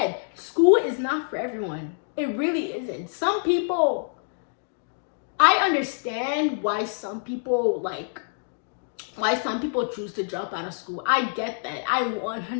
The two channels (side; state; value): right; silent; digital silence